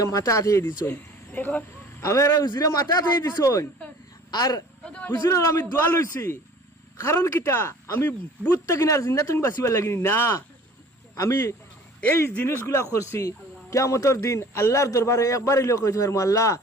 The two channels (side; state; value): both; normal; correlation 0.48